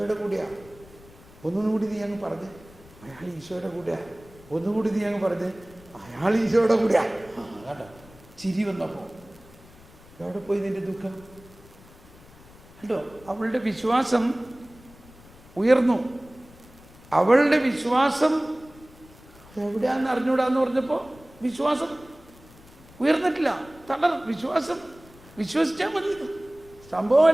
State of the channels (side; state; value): left; noise; rumble, 23 dB below the sound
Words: കൂടെയാണ്. ഒന്നുകൂടി നീ അങ്ങ് പറഞ്ഞ് അയാൾ ഈശോയുടെ കൂടെയാണ്. ഒന്നുകൂടി നീ അങ്ങ് പറഞ്ഞ് അയാൾ ഈശോയുടെ കൂടെയാണ്. കേട്ടോ, ചിരി വന്നപ്പോൾ എവിടെ പോയി നിന്റെ ദുഃഖം? കേട്ടോ, അവളുടെ വിശ്വാസം ഉയർന്നു. അവളുടെ വിശ്വാസം എവിടെയാണെന്ന് അറിഞ്ഞൂടാന്ന് പറഞ്ഞപ്പോൾ വിശ്വാസം ഉയർന്നിട്ടില്ല. വിശ്വാസം വിശ്വസിച്ചാൽ മതി. സംഭവം